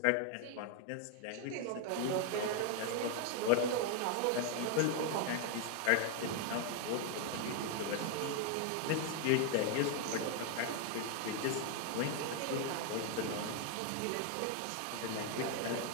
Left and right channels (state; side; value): different; both; correlation 0.01